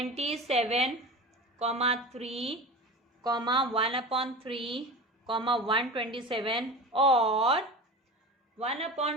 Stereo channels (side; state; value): both; normal; correlation 0.31